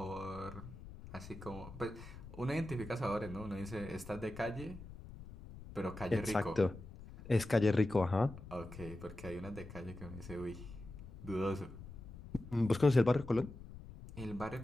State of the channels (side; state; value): left; noise; rumble, 14 dB below the sound